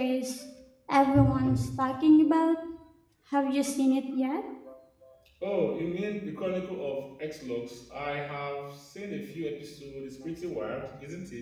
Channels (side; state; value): both; identical; correlation 1.00